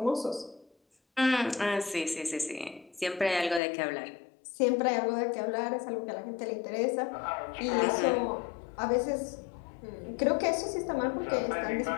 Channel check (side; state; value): right; drops out; at 3.6 s